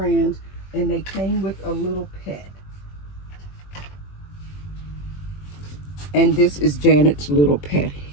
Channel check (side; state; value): right; late; 21 ms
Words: and they came with a little pet. And this is Janet's little pet